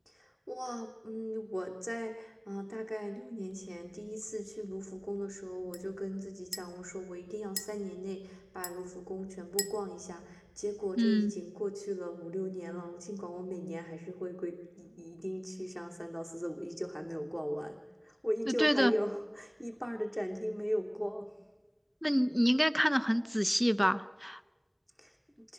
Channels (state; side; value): identical; both; correlation 1.00